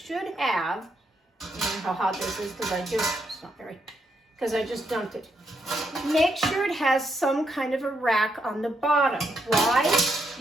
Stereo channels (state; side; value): normal; both; correlation 0.78